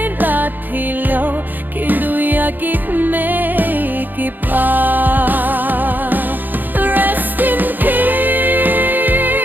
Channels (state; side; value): late; left; 0.087 ms